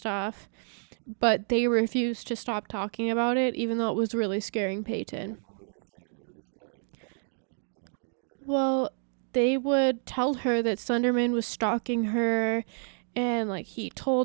But they refused to stop talking about it, even though it was really scaring Peyton. Well, they would tell her that Slenderman was stalking her, and like he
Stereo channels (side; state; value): left; silent; digital silence